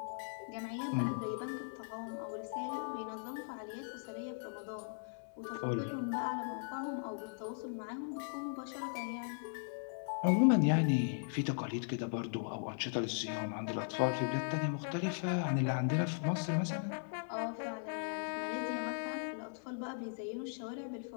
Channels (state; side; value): silent; right; digital silence